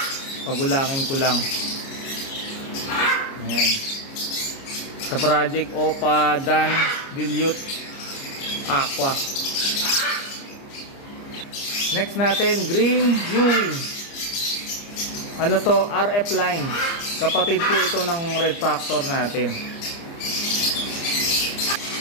Pagulangin ko lang. Ayan. Sa project Opa Dan Dilute Aqua. Next natin, Green U-wing. Ano to? RF line. Kapatid po ito ng Red Factor natin.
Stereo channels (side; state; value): right; late; 29 ms